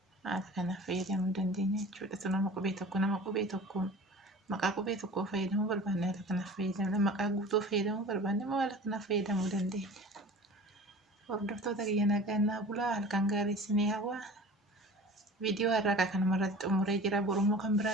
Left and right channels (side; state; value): both; normal; correlation 0.40